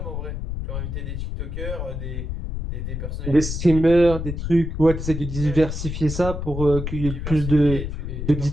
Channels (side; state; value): left; noise; rumble, 5 dB below the sound